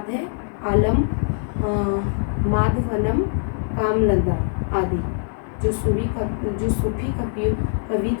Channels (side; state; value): right; silent; digital silence